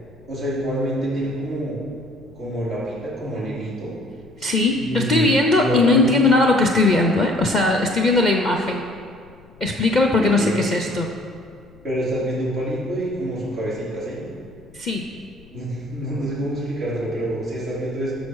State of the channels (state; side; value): noise; left; rumble, 25 dB below the sound